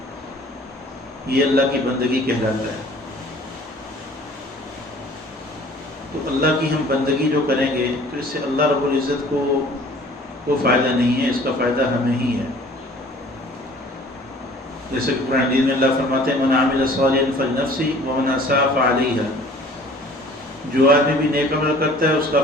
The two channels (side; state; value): both; normal; correlation 0.51